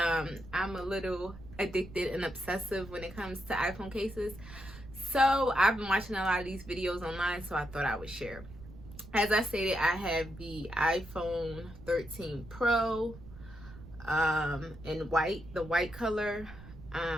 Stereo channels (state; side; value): noise; right; rumble, 16 dB below the sound